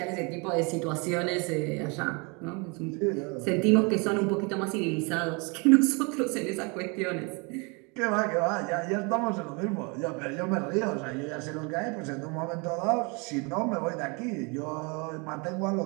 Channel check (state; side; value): quieter; left; 30.8 dB